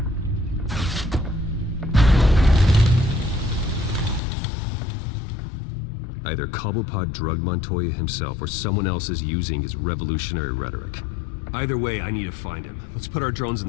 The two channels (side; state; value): right; drops out; at 4.2 s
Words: Either Cobblepot drugged Montoya himself or someone else is using his revolutionary rhetoric. Either way, I need to find him. Let's put our drones in